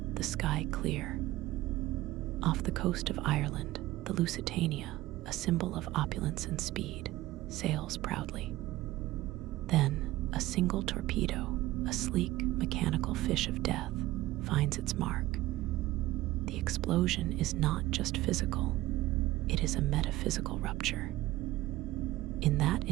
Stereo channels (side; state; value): left; quieter; 17.1 dB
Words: the sky clear. Off the coast of Ireland, the Lusitania, a symbol of opulence and speed, sails proudly. Then, a single torpedo, a sleek, mechanical fish of death, finds its mark. The explosion is not just physical, it is a metaphysical rupture. In that